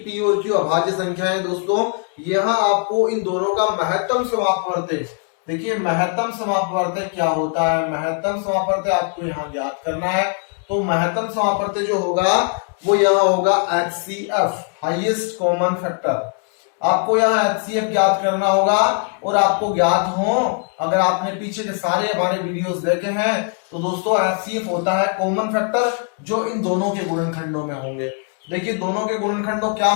p और q अभाज्य संख्या है। दोस्तों, यहाँ आपको इन दोनों का महत्तम समापवर्तक, देखिए महत्तम समापवर्तक क्या होता है। महत्तम समापवर्तक आपको यहाँ ज्ञात करना है। तो महत्तम समापवर्तक जो होगा वो यहाँ होगा HCF, हाईएस्ट कॉमन फैक्टर। आपको यहाँ HCF ज्ञात करना होगा, और आपको ज्ञात हो, अगर आपने पीछे के सारे हमारे वीडियोस देखे हैं तो दोस्तों HCF होता है कॉमन फैक्टर जो इन दोनों के गुणनखंडों में होंगे। देखिए, दोनों के गुणनखंडों क्या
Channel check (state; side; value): quieter; right; 39.8 dB